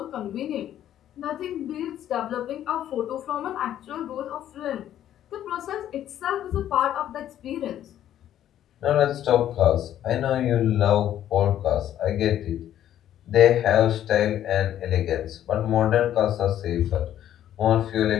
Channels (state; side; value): quieter; right; 11.4 dB